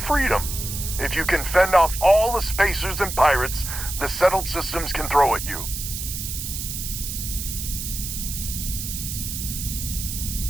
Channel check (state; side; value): noise; right; hiss, 6 dB below the sound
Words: If you can fend off all the spacers and pirates the settled systems can throw at you.